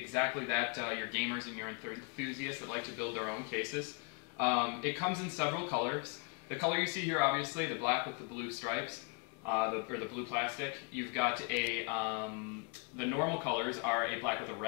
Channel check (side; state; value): right; quieter; 34.6 dB